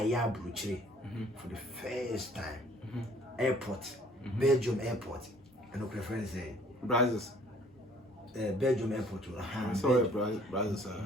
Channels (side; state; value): both; normal; correlation 0.56